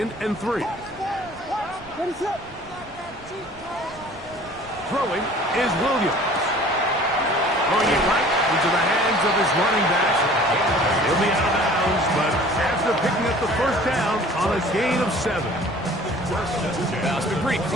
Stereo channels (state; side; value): noise; right; rumble, 21 dB below the sound